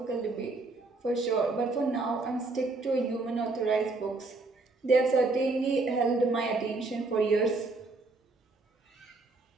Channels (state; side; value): quieter; left; 3.5 dB